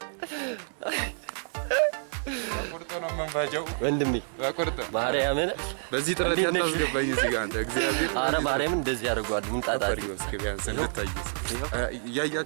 ቁርጥ ነው መንፋጃው ወንድሜ ቁርጥ ማርያምን በዚህ ጥረት ያታስገባኝ እዚህ ጋር አንተ እግዚአብሔር አረ ማርያምን እንደዚህ ያደርጋሉ። ምንጣጣሪ ቢያንስ እንድታዩስ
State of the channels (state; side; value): silent; left; digital silence